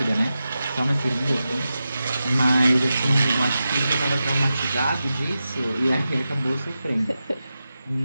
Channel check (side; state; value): both; inverted; correlation -0.91